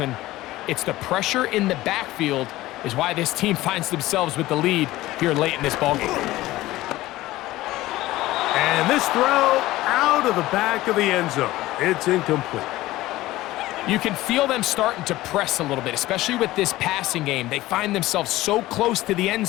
it's the pressure in the backfield is why this team finds themselves with the lead here late in this ballgame. And this throw out of the back of the end zone. It's incomplete. You can feel them starting to press a little bit, especially with this passing game. They find themselves so close to the end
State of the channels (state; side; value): quieter; right; 17.1 dB